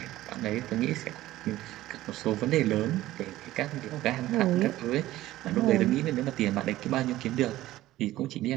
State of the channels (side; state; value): left; quieter; 15.6 dB